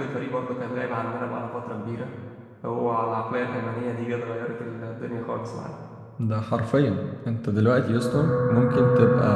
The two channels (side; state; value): both; identical; correlation 1.00